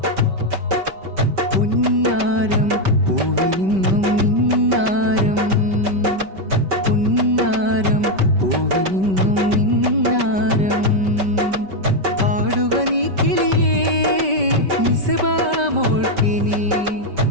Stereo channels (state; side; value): late; left; 5.2 ms